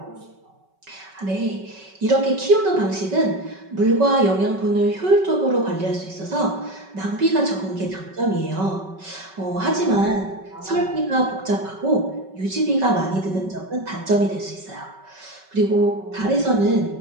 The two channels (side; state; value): left; late; 5.3 ms